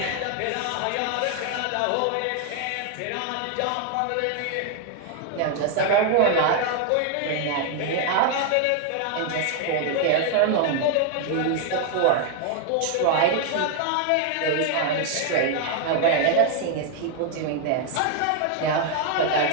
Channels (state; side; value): different; both; correlation 0.00